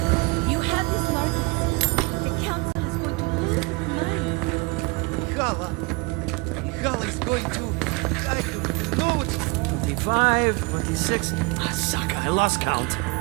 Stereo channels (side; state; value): left; quieter; 27.7 dB